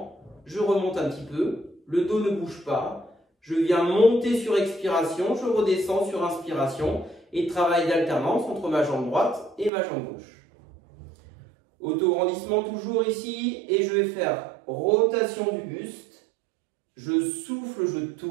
je remonte un petit peu. Le dos ne bouge pas. Je viens monter sur expiration, je redescends sur inspiration et travail d'alternance entre ma jambe droite et ma jambe gauche. Auto-grandissement toujours ici et je vais faire rotation du buste. Je souffle, je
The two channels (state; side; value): drops out; left; at 9.7 s